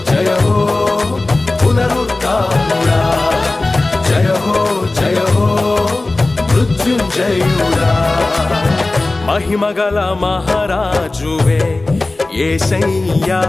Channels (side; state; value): right; quieter; 3.1 dB